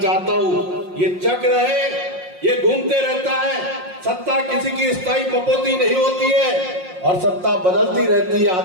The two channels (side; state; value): left; late; 5.6 ms